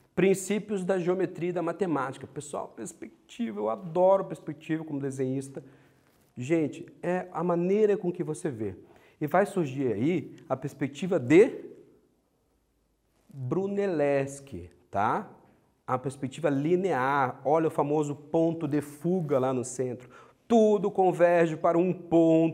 princípios da geometria e da matemática. Pessoal, perspectiva, eu adoro perspectiva como desenhista. Gente, é a maneira com que você vê. E vai surgir aí a perspectiva de Brunelleschi, tá? A perspectiva linear, olha o famoso ponto de fuga lá no centro. Tudo converge para um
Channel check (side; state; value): both; identical; correlation 1.00